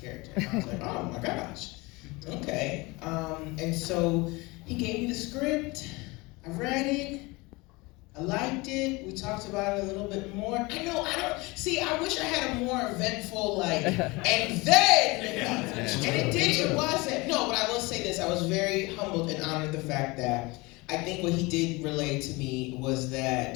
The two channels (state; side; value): quieter; right; 24.2 dB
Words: And I was like, oh my gosh, okay. And so he gave me the script, I read it, I liked it, we talked about it a little bit more. I wish I had a more eventful, and then, it wasn't. No, but I will say this, I was very humbled and honored the fact that I think what he did relay to me was